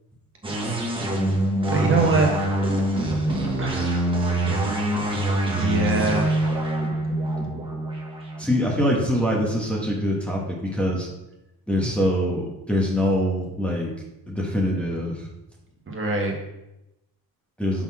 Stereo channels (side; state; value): both; normal; correlation 0.57